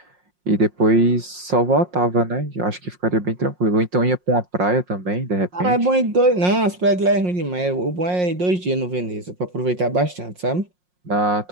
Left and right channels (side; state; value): left; late; 5.6 ms